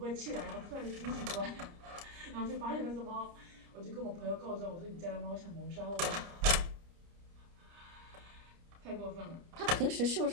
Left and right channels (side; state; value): left; late; 30 ms